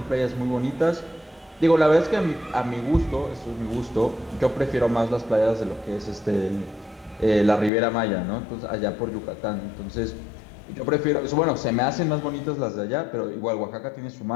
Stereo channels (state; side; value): drops out; right; at 7.7 s